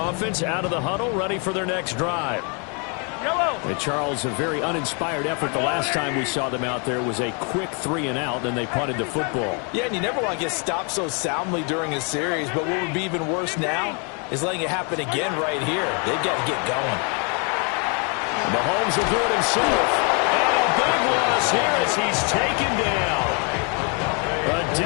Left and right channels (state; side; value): quieter; right; 36.0 dB